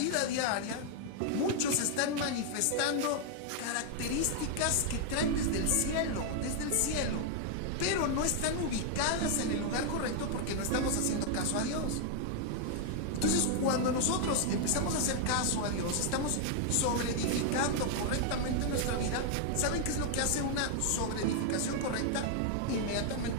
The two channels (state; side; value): different; both; correlation 0.00